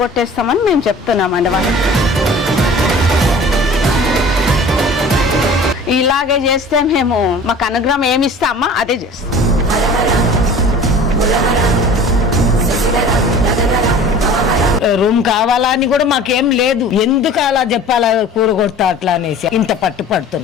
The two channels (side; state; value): both; normal; correlation 0.43